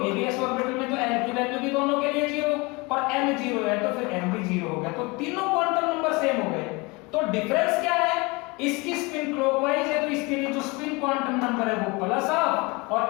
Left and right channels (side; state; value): right; quieter; 26.1 dB